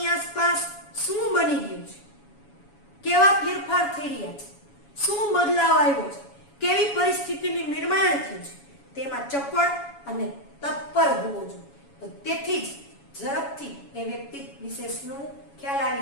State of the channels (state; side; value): late; right; 7.1 ms